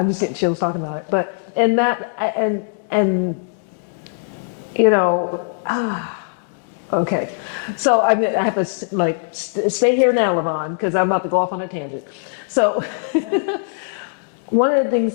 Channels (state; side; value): quieter; right; 38.5 dB